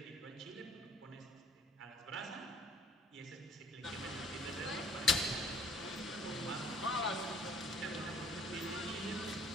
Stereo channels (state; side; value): normal; both; correlation 0.57